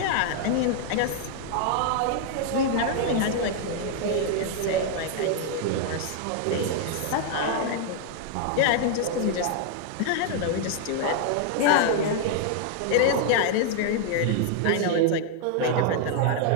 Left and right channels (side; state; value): both; different; correlation 0.00